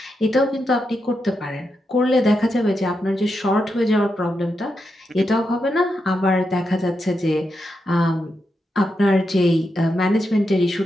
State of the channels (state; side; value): normal; both; correlation 0.85